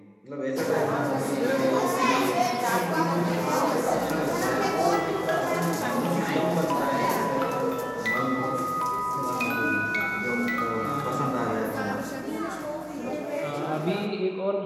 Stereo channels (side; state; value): both; identical; correlation 1.00